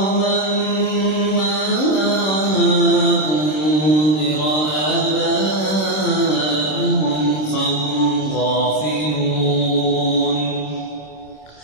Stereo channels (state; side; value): late; right; 26 ms